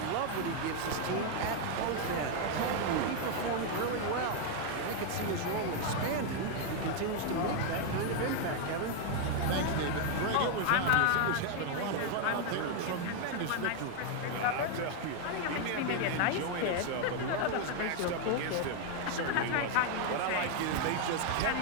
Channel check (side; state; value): both; different; correlation 0.00